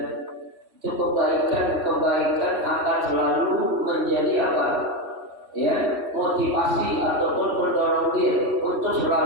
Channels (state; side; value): late; left; 3.1 ms